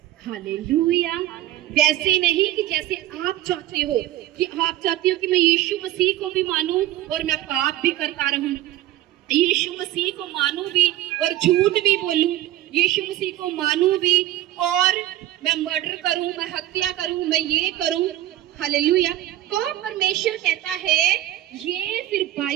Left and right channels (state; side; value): quieter; left; 14.4 dB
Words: हालेलुया। वैसे नहीं कि जैसे आप चाहते हो, कि आप चाहते हो कि मैं यीशु मसीह को भी मानूं और मैं पाप भी करता रहूं, यीशु मसीह को मानूं भी और झूठ भी बोलूं, यीशु मसीह को मानूं भी और मैं मर्डर करूं, मैं हत्या करूं, मैं ये करूं, हालेलुया। तो परमेश्वर कहता है ये फिर